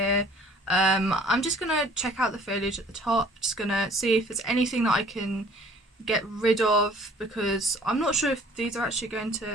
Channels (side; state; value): both; normal; correlation 0.53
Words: I'm just gonna check out the foliage at the top, just gonna see if there's anything that I can get rid of, because I'm not sure if these are actually going to,